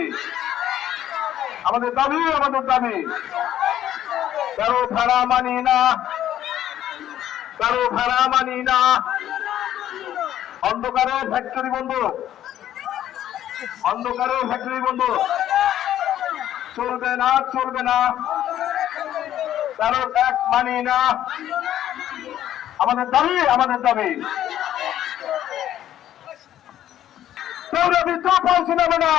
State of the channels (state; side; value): quieter; right; 11.7 dB